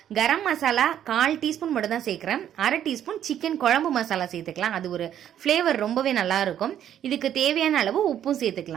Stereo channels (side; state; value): left; quieter; 10.3 dB